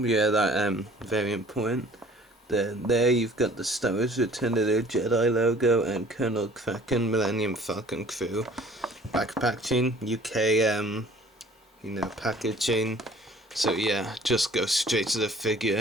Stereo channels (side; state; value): both; normal; correlation 0.51